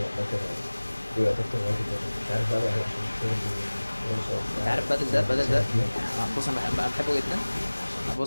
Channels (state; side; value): inverted; both; correlation -1.00